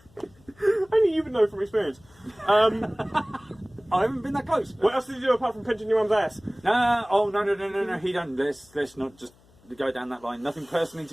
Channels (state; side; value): noise; left; hum, 29 dB below the sound